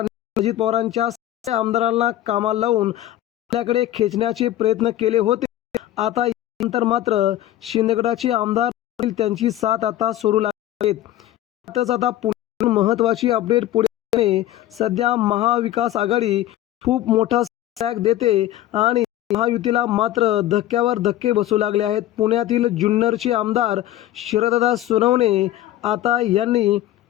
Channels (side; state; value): right; quieter; 13.6 dB